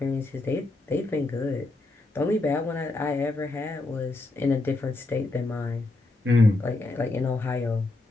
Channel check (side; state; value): right; quieter; 3.0 dB